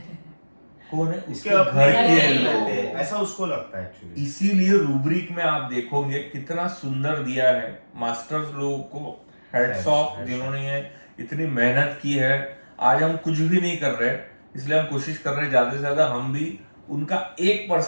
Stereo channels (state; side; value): inverted; both; correlation -1.00